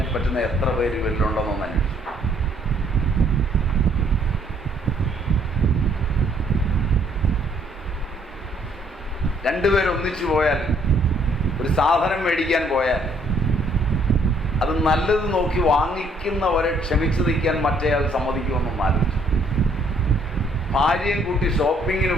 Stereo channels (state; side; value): normal; both; correlation 0.66